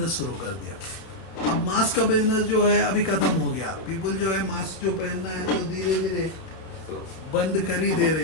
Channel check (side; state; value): right; late; 31 ms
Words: शुरू कर दिया। अब मास्क का बिजनेस जो है अभी खत्म हो गया, पीपल जो है मास्क जो पहनना है तो धीरे धीरे बंद कर ही दे रहे